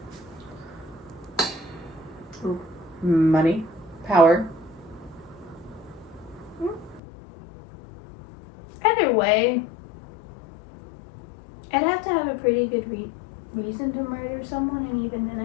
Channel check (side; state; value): right; drops out; at 7.0 s